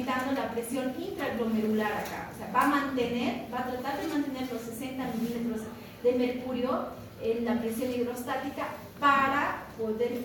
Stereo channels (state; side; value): identical; both; correlation 1.00